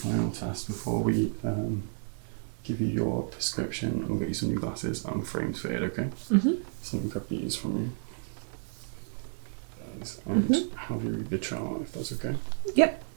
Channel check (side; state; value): left; silent; 56 dB below the other